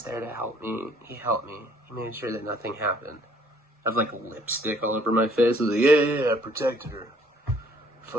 there to help me. He helped me. He made sure that nothing happened. I have like lipstick all over my face. I was like, yeah, I protected her.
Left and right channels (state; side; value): normal; both; correlation 0.61